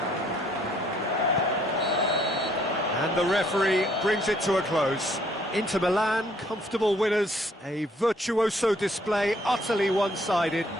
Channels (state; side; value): normal; both; correlation 0.64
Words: And the referee brings it to a close. Inter Milan, comfortable winners, a virtuoso display, utterly one-sided.